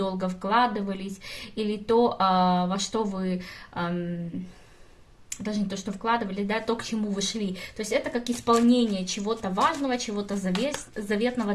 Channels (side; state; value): both; identical; correlation 1.00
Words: вкладывались, или то, во что вы... даже не то, что вкладывали, да, то, к чему вы шли. То есть это как исполнение чего-то важного, чего-то заветного